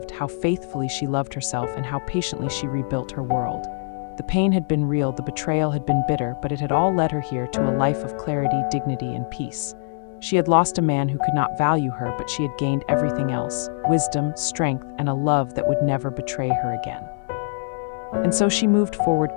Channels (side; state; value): right; silent; 63 dB below the other